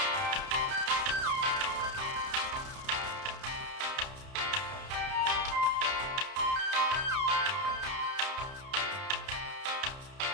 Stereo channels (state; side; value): late; left; 31 ms